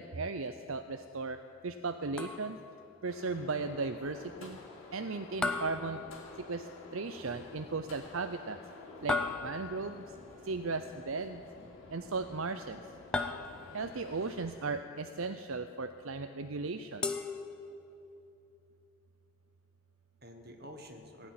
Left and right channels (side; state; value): both; normal; correlation 0.01